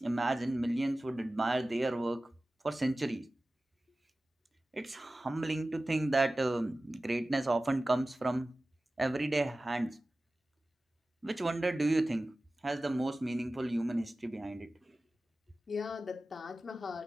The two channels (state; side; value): normal; both; correlation 0.96